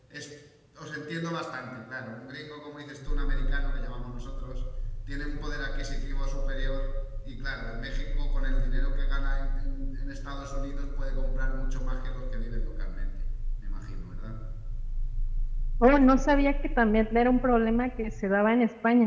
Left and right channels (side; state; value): both; identical; correlation 1.00